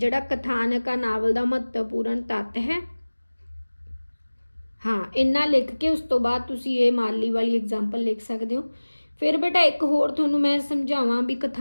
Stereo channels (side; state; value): both; inverted; correlation -1.00